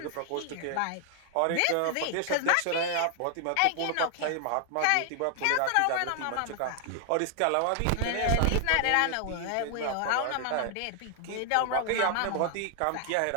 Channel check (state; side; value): different; both; correlation 0.00